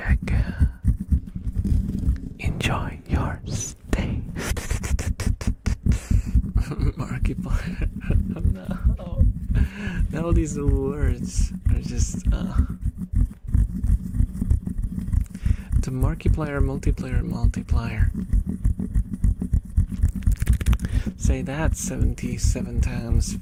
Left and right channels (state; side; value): identical; both; correlation 1.00